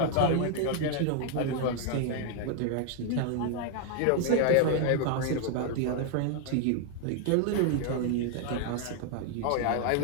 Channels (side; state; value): both; different; correlation 0.00